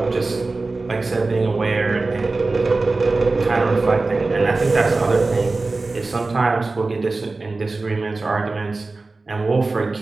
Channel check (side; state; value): left; quieter; 3.5 dB